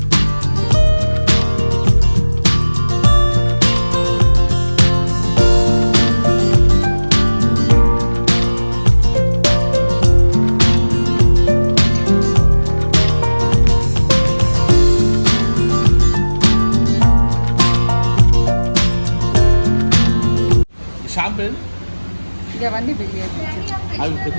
షాంపెన్ ఇవన్నీ బిల్ అవి పెద్ద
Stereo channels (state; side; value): inverted; both; correlation -1.00